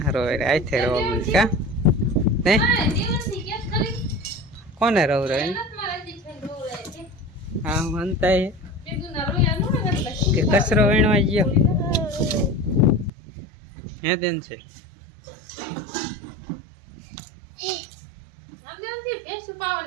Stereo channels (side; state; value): left; drops out; at 13.1 s